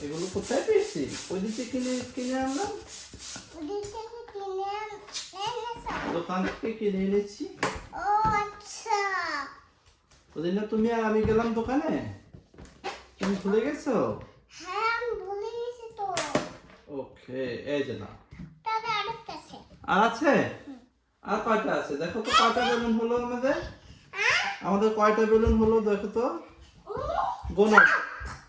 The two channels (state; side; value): identical; both; correlation 1.00